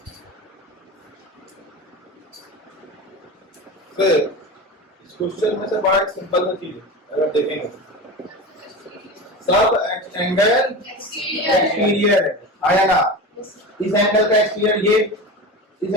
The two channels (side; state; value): both; normal; correlation 0.28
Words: फिर इस क्वेश्चन में से बड़ा एक सिंपल सा चीज है अगर देखेंगे सब एंगल एक्सटीरियर है आया ना इस एंगल का एक्सटीरियर ये इस